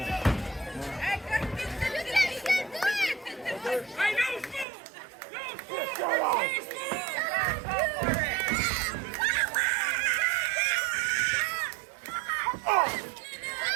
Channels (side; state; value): left; drops out; at 4.7 s